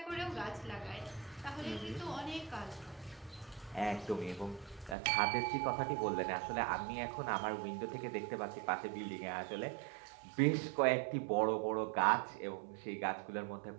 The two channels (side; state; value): left; drops out; at 5.0 s